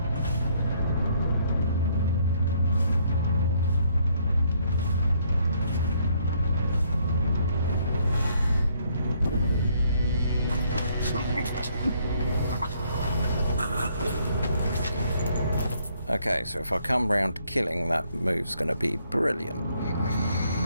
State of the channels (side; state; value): both; inverted; correlation -0.68